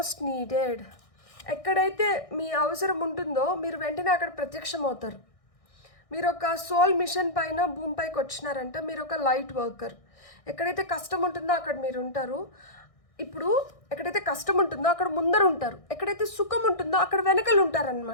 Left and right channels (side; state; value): right; late; 1.6 ms